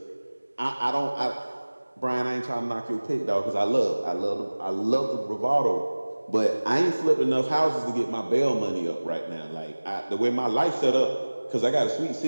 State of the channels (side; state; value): both; inverted; correlation -1.00